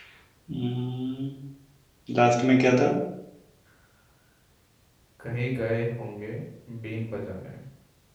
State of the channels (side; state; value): both; identical; correlation 1.00